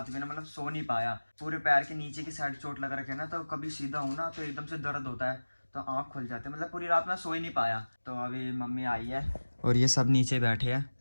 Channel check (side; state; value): both; inverted; correlation -1.00